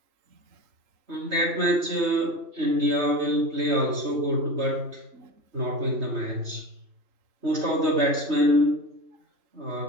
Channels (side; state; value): left; late; 3.2 ms